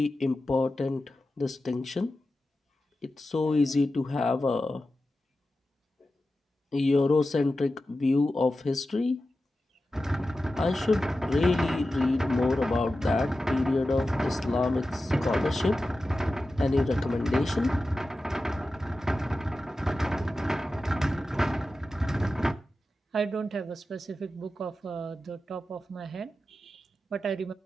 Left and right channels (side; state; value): both; normal; correlation 0.93